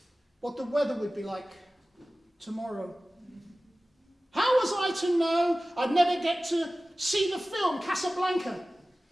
what the weather would be like tomorrow? How was I to know I'd never get to see the film Casablanca,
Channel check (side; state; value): both; normal; correlation 0.97